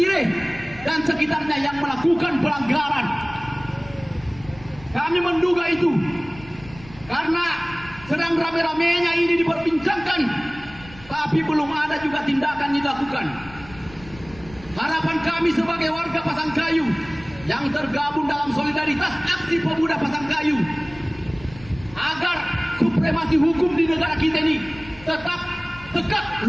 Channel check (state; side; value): noise; left; rumble, 20 dB below the sound